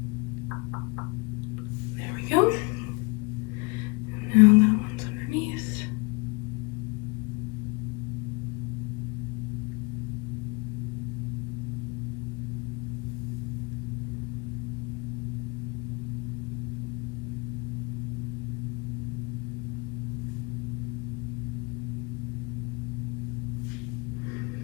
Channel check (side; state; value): right; quieter; 28.6 dB